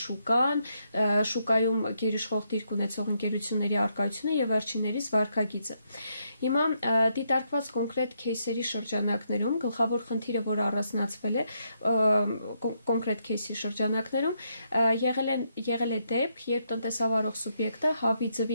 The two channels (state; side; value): inverted; both; correlation -0.77